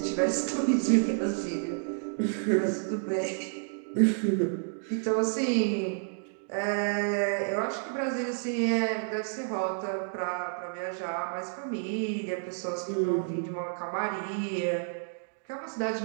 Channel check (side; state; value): left; silent; digital silence